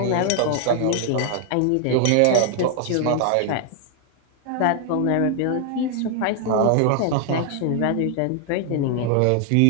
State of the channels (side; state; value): both; different; correlation 0.00